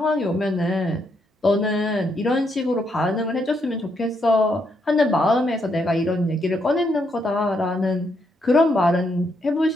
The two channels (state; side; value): normal; both; correlation 0.77